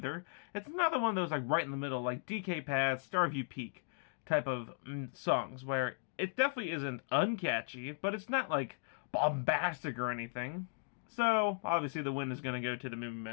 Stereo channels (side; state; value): right; silent; digital silence